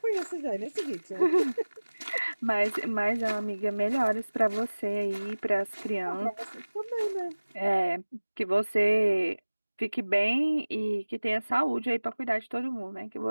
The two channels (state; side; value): inverted; both; correlation -1.00